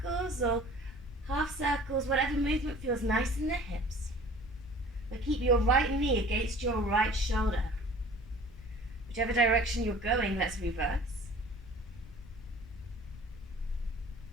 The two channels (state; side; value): noise; left; rumble, 17 dB below the sound